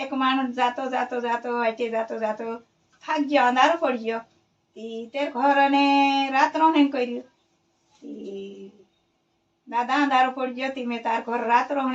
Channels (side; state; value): both; identical; correlation 1.00